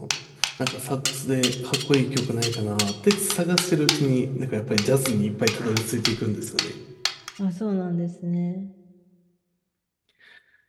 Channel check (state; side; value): identical; both; correlation 1.00